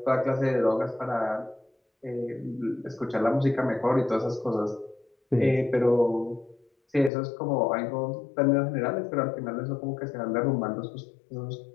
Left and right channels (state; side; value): drops out; right; at 7.1 s